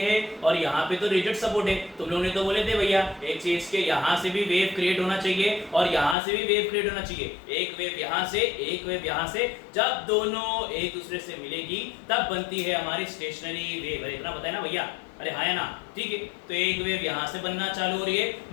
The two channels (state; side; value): drops out; right; at 6.2 s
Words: और यहाँ पे तो रिजिड सपोर्ट है। तुम लोगों ने तो बोले थे भैया एक चीज के यहाँ से भी वेव क्रिएट होना चाहिए और यहाँ से भी वेव क्रिएट होना चाहिए। एक वेव यहाँ से, एक वेव यहाँ से, जब दोनों एक दूसरे से मिलेगी तब बनती है हमारी स्टेशनरी वेव। इतना पता है ना भैया? अरे हाँ या ना? ठीक है। तो एक वेव यहाँ से बनना चालू हो रही है